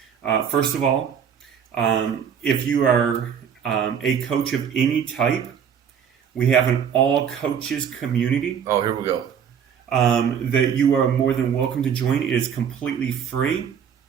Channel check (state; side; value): quieter; left; 7.9 dB